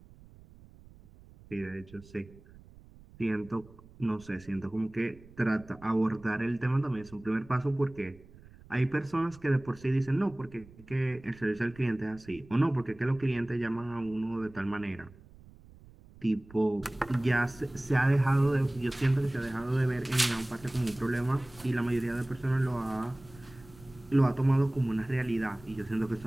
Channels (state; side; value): noise; right; rumble, 22 dB below the sound